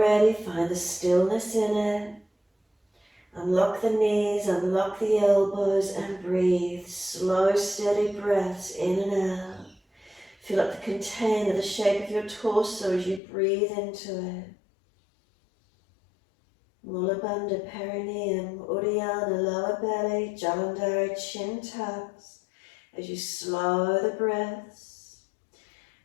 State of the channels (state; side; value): drops out; right; at 13.2 s